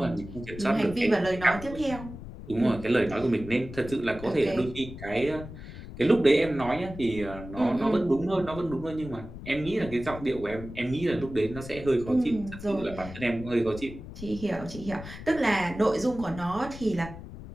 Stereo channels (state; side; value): noise; left; rumble, 13 dB below the sound